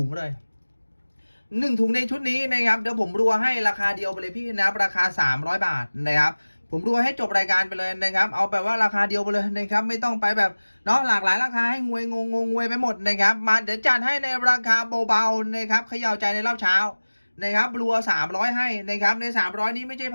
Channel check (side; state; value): both; inverted; correlation -1.00